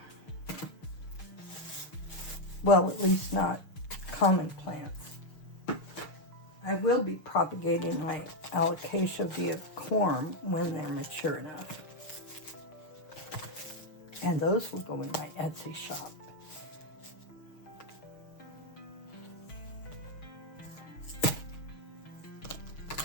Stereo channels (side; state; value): right; late; 6.4 ms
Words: Well, at least not common plants. I will be propagating my alocasia via corm when they're mature enough. And those will go in my Etsy shop.